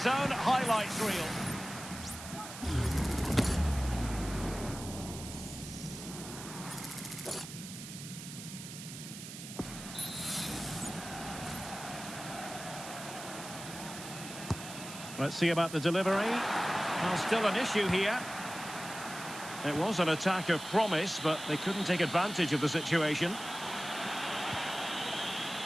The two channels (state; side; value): noise; right; hiss, 11 dB below the sound